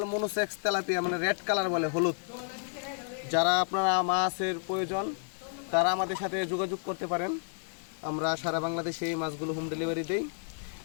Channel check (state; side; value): silent; right; digital silence